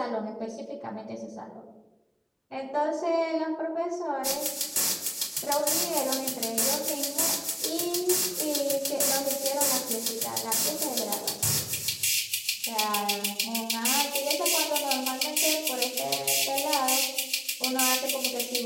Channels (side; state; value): both; identical; correlation 1.00